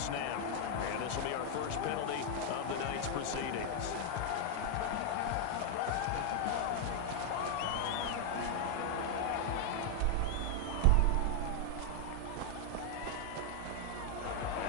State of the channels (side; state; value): both; different; correlation 0.00